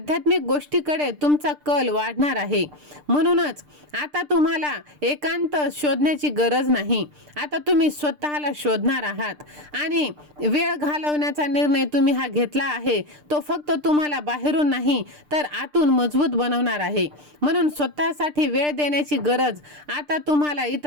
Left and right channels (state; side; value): late; left; 6.7 ms